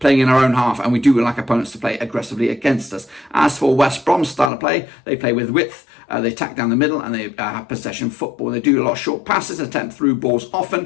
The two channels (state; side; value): drops out; right; at 4.5 s